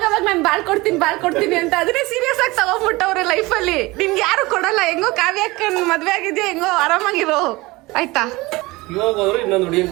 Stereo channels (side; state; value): left; quieter; 21.7 dB